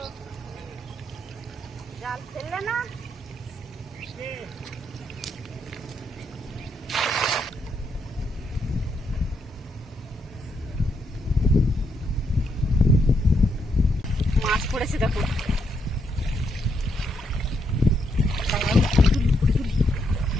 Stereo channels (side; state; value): both; normal; correlation 0.78